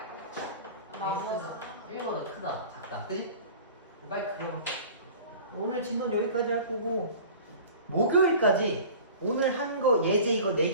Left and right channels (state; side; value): inverted; both; correlation -0.41